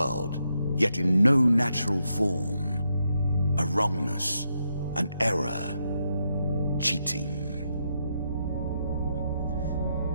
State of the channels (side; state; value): both; inverted; correlation -0.80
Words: yet in no natural form. A wrongness, an error, cheating.